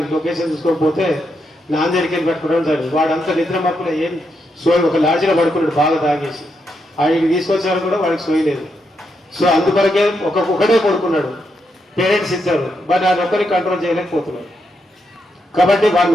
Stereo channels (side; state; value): both; normal; correlation 0.82